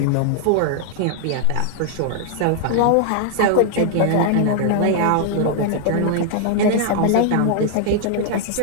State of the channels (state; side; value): different; both; correlation 0.00